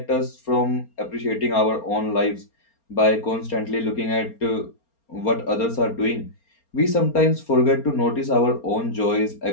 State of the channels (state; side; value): late; right; 4.3 ms